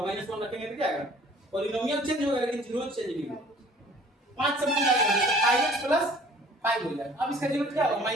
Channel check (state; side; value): normal; both; correlation 0.52